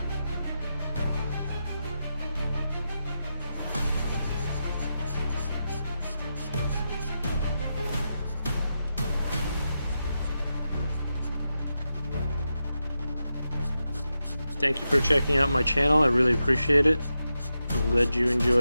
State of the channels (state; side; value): inverted; both; correlation -0.88